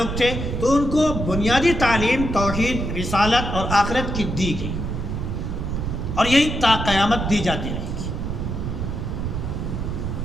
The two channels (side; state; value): right; noise; rumble, 3 dB below the sound